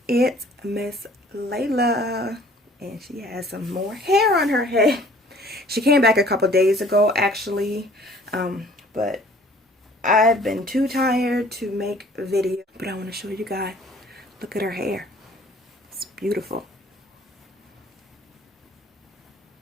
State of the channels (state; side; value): normal; both; correlation 0.53